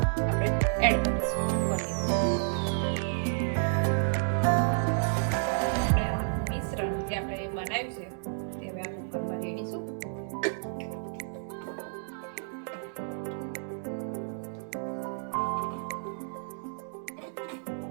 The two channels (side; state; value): left; silent; digital silence